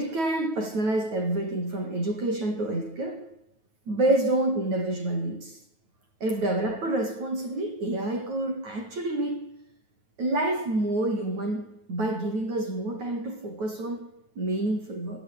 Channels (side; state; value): left; late; 9.3 ms